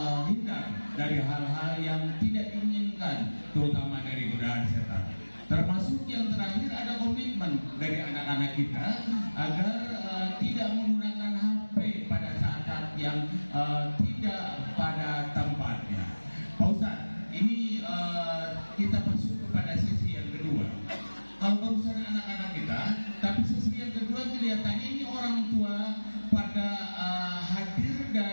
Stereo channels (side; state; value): both; inverted; correlation -1.00